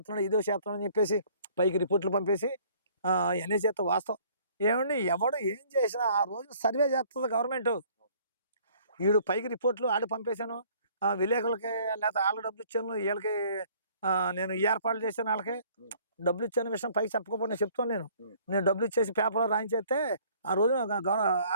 అని చెప్పేసి పైకి రిపోర్ట్లు పంపేసి ఇవన్నీ చేస్తా. వాస్తవం ఏమండి, ఎవడు ఏం చేసినా ఆ రోజు సర్వే చేస్తుంది గవర్నమెంట్. వీడు పైకి రిపోర్ట్లు ఆడి పంపేశాను, విలేకరులకి లేకపోతే వాళ్ళకి డబ్బులు ఇచ్చాను, వీళ్ళకి నేను ఏర్పాట్లు చేశాను, వాళ్ళకి డబ్బులు ఇచ్చాను విషయం పైకి చెప్పకపోతే నేను చెప్తాను. నేను డబ్బులు ఇచ్చేసి పేపర్లో రాయించేస్తే ఆ రోజు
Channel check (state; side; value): inverted; both; correlation -0.57